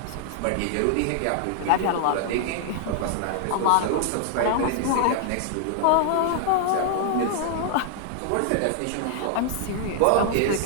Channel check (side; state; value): both; different; correlation 0.00